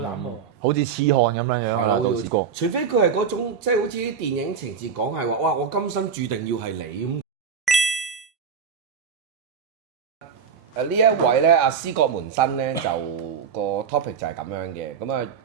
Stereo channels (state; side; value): quieter; left; 6.7 dB